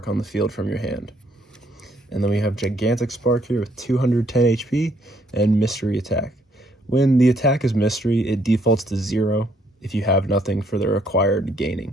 on the field from your hand. And then we have Gigantic Spark here with 210 HP and Mystery Attack. When the attack is Mystery, it defaults to 0 if you have nothing for the required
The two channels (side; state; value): both; normal; correlation 0.69